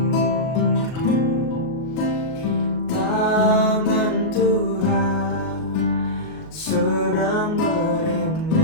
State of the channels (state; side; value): late; right; 38 ms